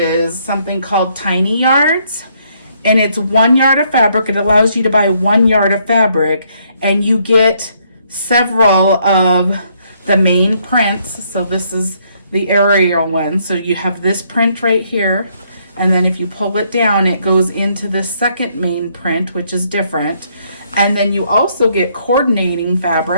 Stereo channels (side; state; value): both; inverted; correlation -0.70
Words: something called Tiny Yards, and it's 1 yard of fabric. It allows you to buy 1 yard of fabric, and you get several of the main prints. So this is the aerial one. So you have this print right here. And then if you pull it down, it goes into the second main print, which is different. And then you also get coordinating